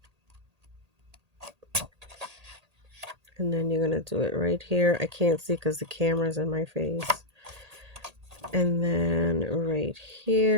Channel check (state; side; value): late; left; 1.8 ms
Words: And then you're going to do it right here. I can't see because the camera's in my face. And then right